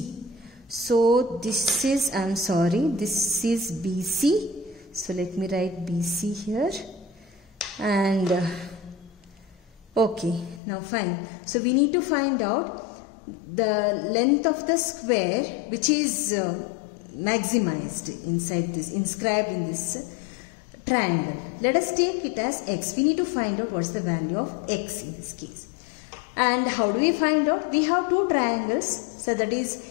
So this is, this is BC. So let me write BC here. And okay, now fine. So we need to find out the length of the square which is maximized inside this, inscribed in this triangle. Let us take it as x. We need to find out what is the value of x in this case. And how do we find out? We have two triangles. So that is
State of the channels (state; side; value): drops out; right; at 10.6 s